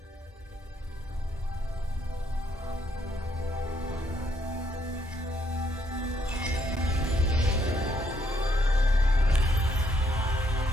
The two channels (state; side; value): normal; both; correlation 0.72